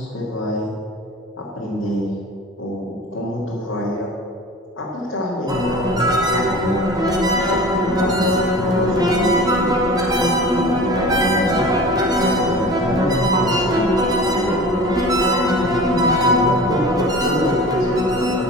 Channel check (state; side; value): normal; both; correlation 0.38